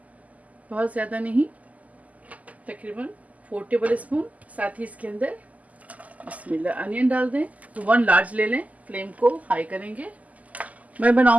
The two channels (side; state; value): left; late; 0.075 ms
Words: बहुत ज़्यादा नहीं, तकरीबन 4 टेबल स्पून। साथ ही इसके अंदर बिस्मिल्लाह अनियन डाल दें। तो 1 लार्ज ले लें। फ्लेम को हाई करेंगे। मैं